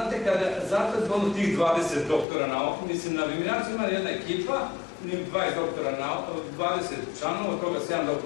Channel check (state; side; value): drops out; right; at 2.2 s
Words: zato je zgodno tih 20 doktora nauka, mislim, na Viminaciju ima jedna ekipa, 20 doktora nauka, 20 članova, od toga 7